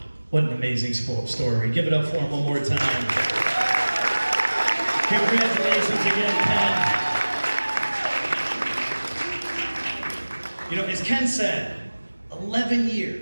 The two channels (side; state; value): both; inverted; correlation -1.00